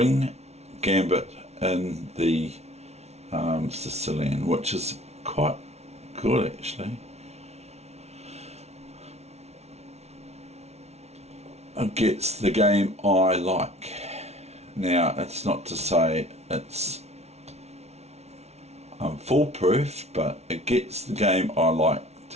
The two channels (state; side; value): late; left; 0.31 ms